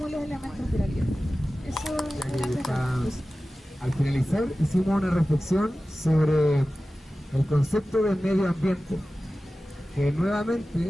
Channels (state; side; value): normal; both; correlation 0.95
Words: de los elementos de la vida. Eso Ya era que está- todo. Al finalizar hicimos una reflexión sobre el concepto del medio ambiente, que